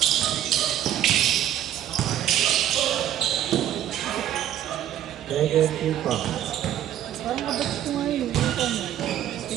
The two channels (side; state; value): left; quieter; 11.4 dB